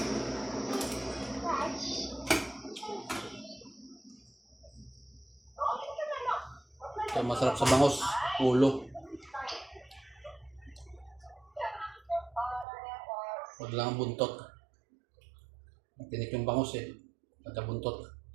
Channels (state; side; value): drops out; left; at 12.7 s